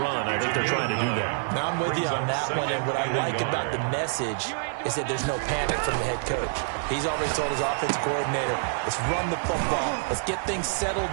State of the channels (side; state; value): left; silent; digital silence